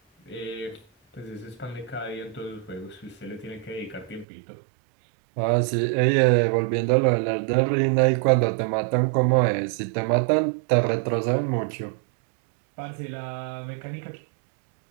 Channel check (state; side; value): drops out; left; at 4.2 s